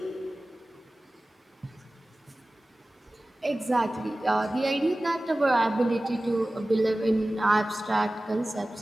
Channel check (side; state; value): both; normal; correlation 0.97